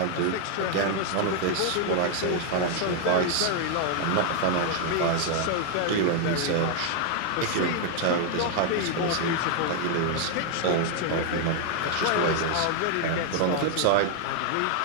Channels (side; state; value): both; different; correlation 0.00